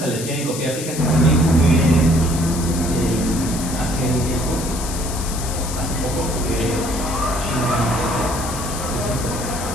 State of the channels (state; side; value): noise; left; hiss, 8 dB below the sound